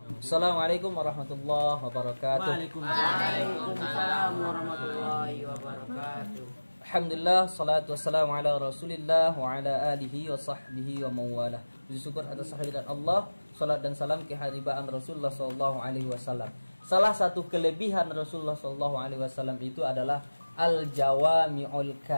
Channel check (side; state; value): both; inverted; correlation -1.00